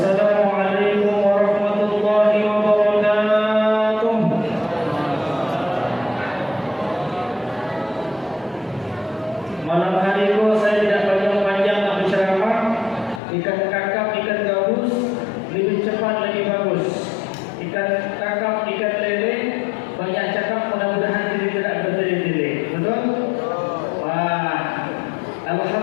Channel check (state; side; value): drops out; right; at 13.2 s